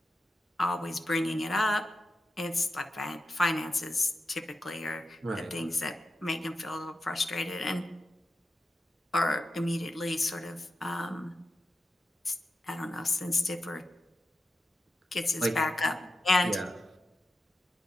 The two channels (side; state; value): both; normal; correlation 0.89